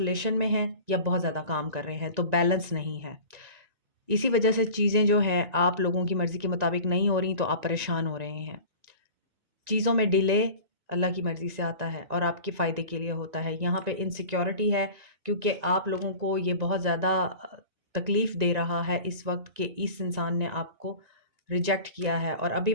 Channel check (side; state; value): left; late; 1.9 ms